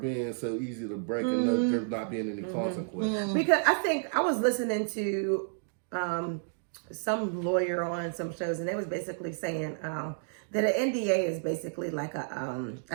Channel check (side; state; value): left; silent; digital silence